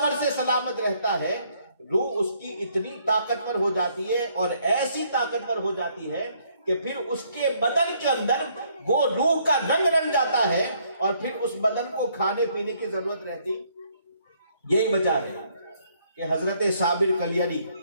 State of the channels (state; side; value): inverted; both; correlation -0.68